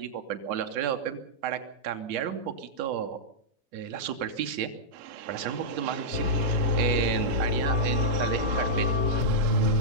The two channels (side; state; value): left; late; 7.2 ms